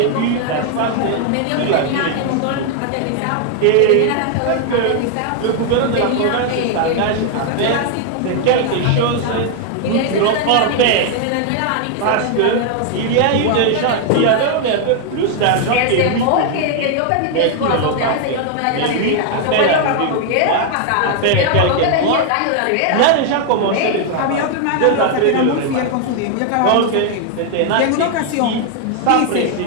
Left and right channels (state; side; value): different; both; correlation 0.00